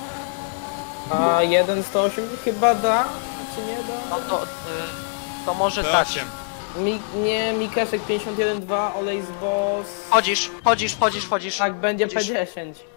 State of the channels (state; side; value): silent; right; digital silence